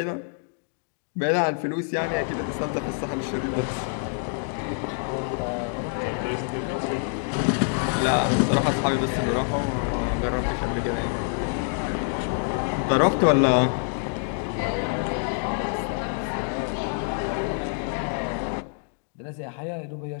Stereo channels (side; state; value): right; silent; 61 dB below the other